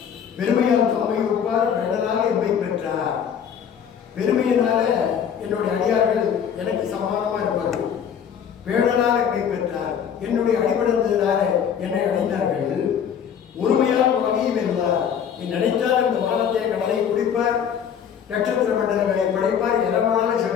பெருமையால் தம்மை ஒப்பார் பெண்ணனாக எம்மை பெற்றார். பெருமையினால என்னுடைய அடியார்கள் எனக்கு சமானமா இருப்பார்கள். பேணலால் எம்மை பெற்றார். என்னுடைய அடிபடுந்ததினால என்னை அடைந்தார்கள். ஒருமையால் வகையும் வெல்வார். என் நினைத்தால் இந்த வானத்தை கடலை குடிப்பார், நட்சத்திர மண்டலங்களை படைப்பார், எதமான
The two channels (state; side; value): quieter; right; 8.1 dB